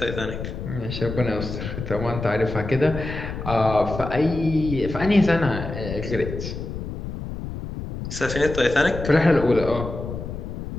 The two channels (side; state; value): left; noise; rumble, 7 dB below the sound